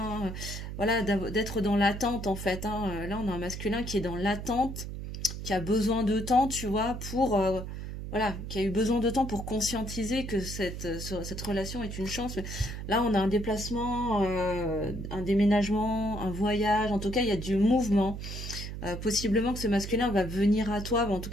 Voilà, d'être dans l'attente, en fait, hein. Là, on a un masculin qui est dans l'attente, qui a besoin de temps, tu vois, pour... voilà, qui a eu besoin de temps pour conscientiser que cette relation est une chance. Mais là, on a un déplacement, un déménagement, un voyage. En tout cas, il y a du mouvement. Possiblement que ce masculin va venir à toi, en tout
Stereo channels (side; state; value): right; noise; hum, 7 dB below the sound